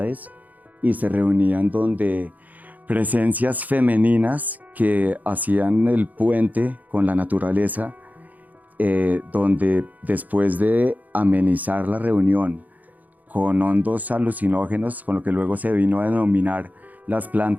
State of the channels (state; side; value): late; left; 0.080 ms